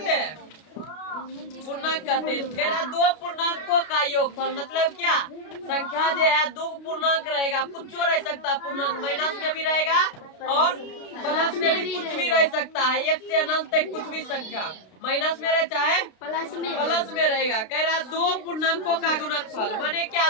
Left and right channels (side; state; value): right; late; 32 ms